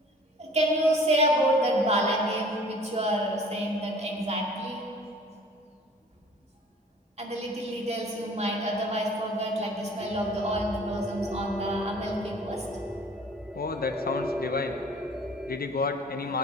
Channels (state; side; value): normal; both; correlation 0.50